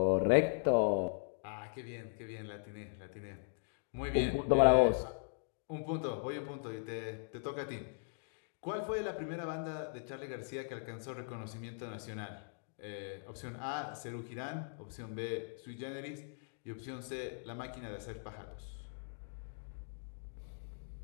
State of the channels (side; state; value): right; silent; digital silence